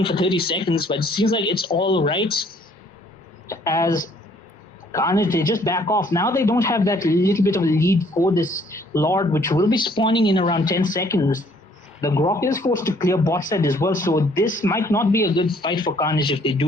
for 30 seconds, but it seems like it's all right as Carnage, they just back off. Now they don't have that little bit of a lead for this Lord, which will be spawning in around 10 seconds. The Grok is forced to clear bot side as well, so this might not be a good fight for Carnage if they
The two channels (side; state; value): both; normal; correlation 0.62